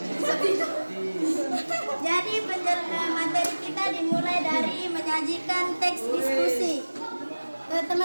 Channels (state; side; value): inverted; both; correlation -1.00